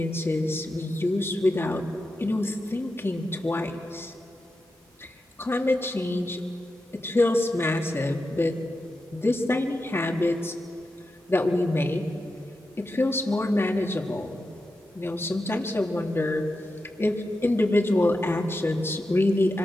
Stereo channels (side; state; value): both; normal; correlation 0.89